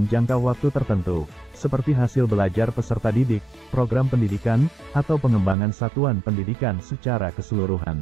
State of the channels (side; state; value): left; drops out; at 5.6 s